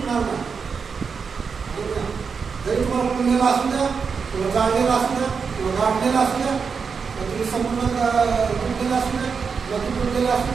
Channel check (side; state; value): left; quieter; 5.7 dB